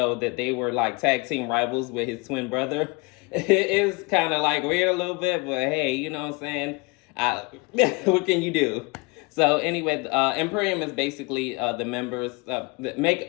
that they were like tag team rivals with his twin brother. It is kind of like weird a little bit, but hey, you know what I'm saying? What can you do? So anyway, Imperium is basically the members that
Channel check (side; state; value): right; quieter; 28.4 dB